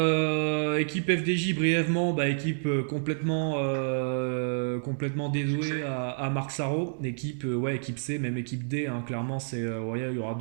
équipe FDJ brièvement, équipe complètement dévouée à Marc Sarro, équipe C, même équipe D, hein, clairement il y aura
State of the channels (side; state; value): left; silent; digital silence